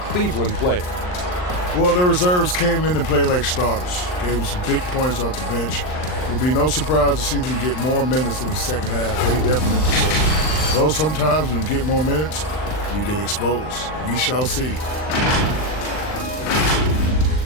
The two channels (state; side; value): late; right; 39 ms